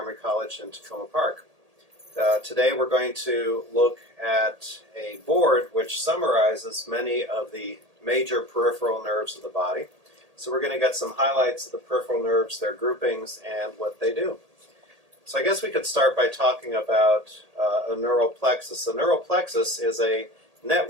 College in Tacoma Park. Today we're going to look at a board which summarizes many of the major peripheral nerves of the body. So we're going to get some highlights of the peripheral nerves, their groupings, and what they do. So I guess we could start by talking about a neural plexus. A neural plexus is a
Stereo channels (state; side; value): late; left; 1.8 ms